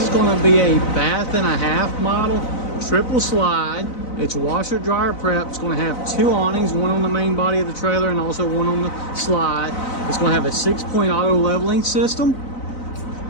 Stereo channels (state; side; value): late; right; 4.0 ms